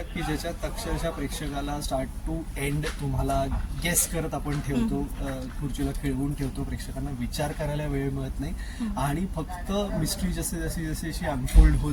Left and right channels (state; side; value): identical; both; correlation 1.00